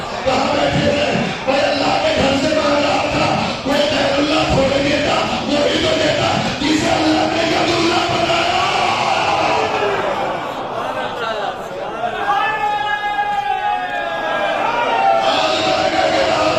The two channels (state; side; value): identical; both; correlation 1.00